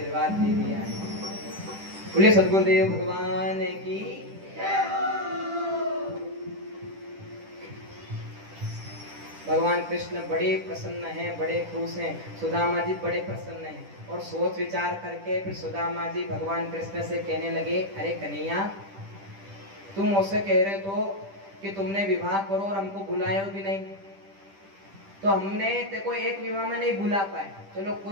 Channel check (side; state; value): left; late; 10 ms